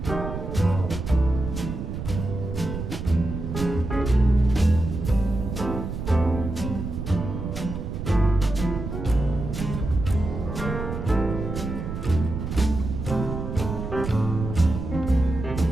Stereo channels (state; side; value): noise; right; rumble, 5 dB below the sound